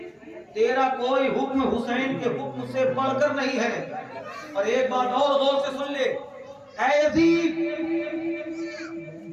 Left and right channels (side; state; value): both; identical; correlation 1.00